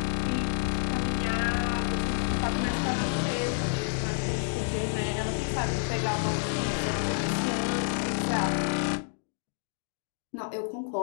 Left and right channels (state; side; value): silent; right; digital silence